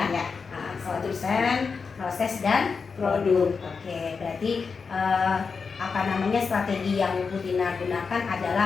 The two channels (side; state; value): right; quieter; 5.2 dB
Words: Konten, proses dan produk. Oke, berarti strategi yang Bu Tina gunakan